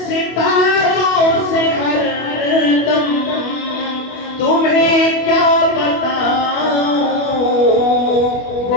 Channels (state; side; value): late; right; 24 ms